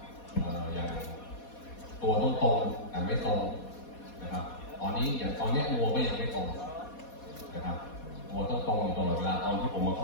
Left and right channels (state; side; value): late; right; 4.2 ms